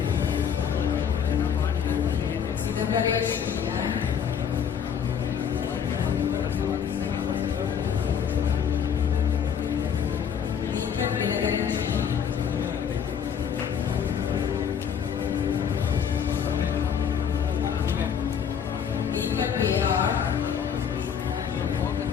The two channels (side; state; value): right; quieter; 7.8 dB